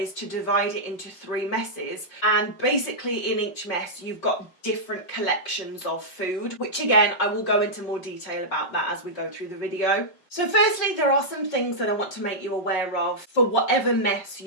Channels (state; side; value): late; right; 5.3 ms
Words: to divide it into 3 messes, and basically in each mess you've got different collections of food, which again I will go into more detail about that as we go through the video. So firstly, there are some things that I want to make you aware of for whatever mess